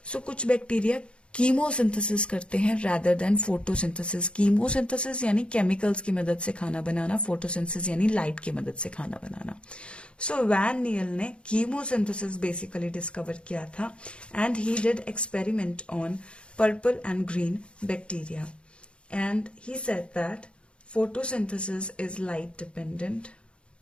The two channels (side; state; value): right; late; 0.057 ms